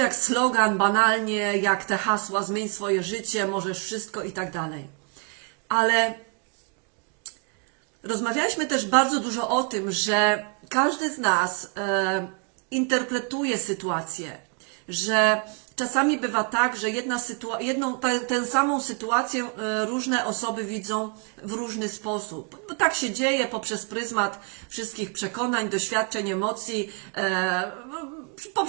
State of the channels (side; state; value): left; quieter; 37.1 dB